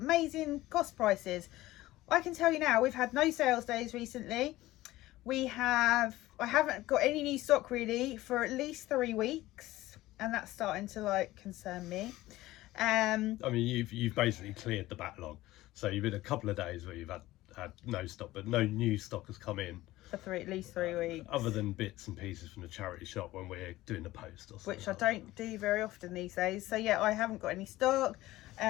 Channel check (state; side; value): quieter; right; 17.0 dB